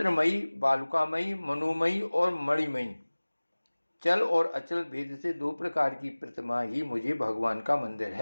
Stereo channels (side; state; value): both; inverted; correlation -1.00